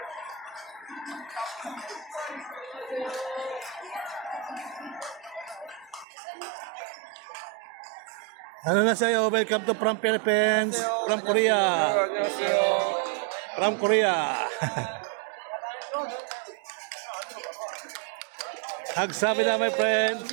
Ano na sa'yo? Welcome to from Philippines. From Korea. From Korea. Hagsabida my friend.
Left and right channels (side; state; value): left; drops out; at 6.1 s